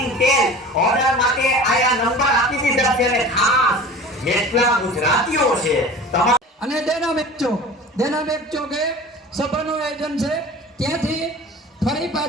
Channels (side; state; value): both; normal; correlation 0.39